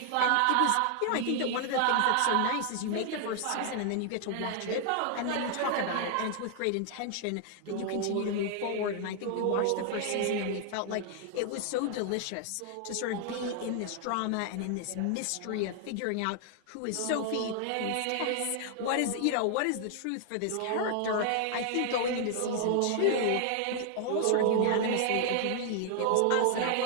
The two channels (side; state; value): both; different; correlation 0.00